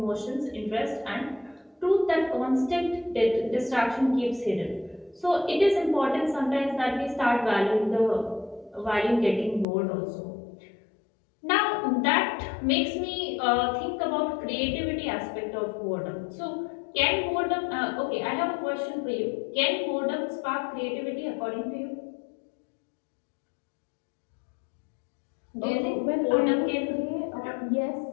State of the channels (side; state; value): right; drops out; at 9.7 s